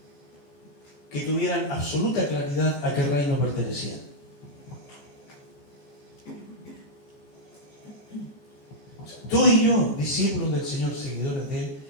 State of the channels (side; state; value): right; late; 14 ms